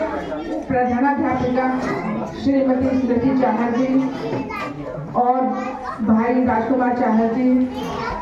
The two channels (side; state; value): both; identical; correlation 1.00